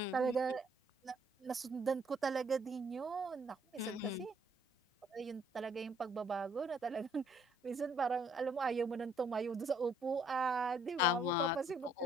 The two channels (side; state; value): both; normal; correlation 0.64